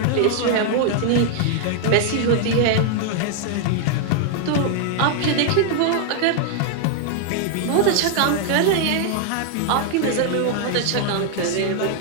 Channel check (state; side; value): different; both; correlation 0.00